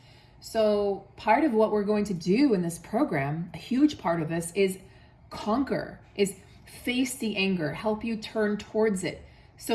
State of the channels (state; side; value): identical; both; correlation 1.00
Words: So part of what we're going to do in this program, a huge part of this, is conquer, is face the anger, help you turn towards it